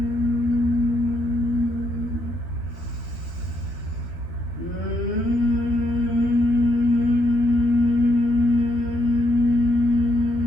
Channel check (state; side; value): late; right; 12 ms